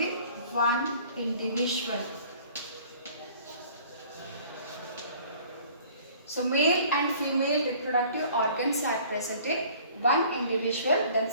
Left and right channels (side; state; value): both; inverted; correlation -0.52